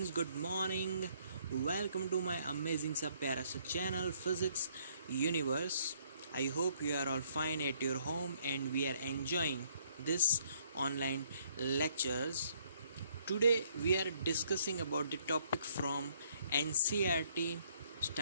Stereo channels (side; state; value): both; inverted; correlation -0.66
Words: good morning. Welcome to my amazing sub pyara channel Physics Universe. I hope you are all fine at your home and we are enjoying this online lectures. Today we are discussing about the topic from NCERT